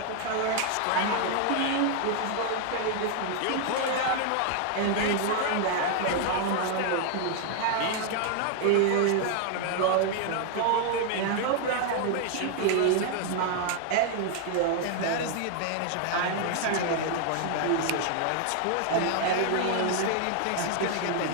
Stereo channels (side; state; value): both; different; correlation 0.00